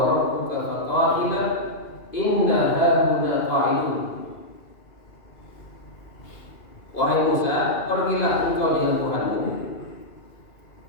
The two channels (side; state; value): right; late; 2.5 ms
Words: rabbuka faqatila inna hahuna qa'idun. Wahai Musa, pergilah engkau dengan Tuhanmu,